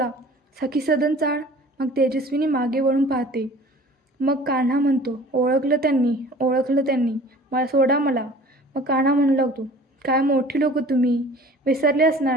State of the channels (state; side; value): normal; both; correlation 0.46